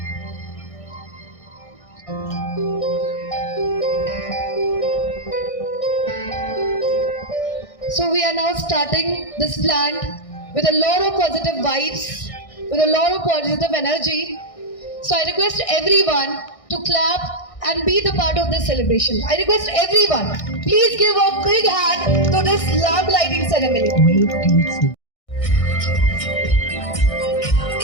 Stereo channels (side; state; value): right; late; 1.6 ms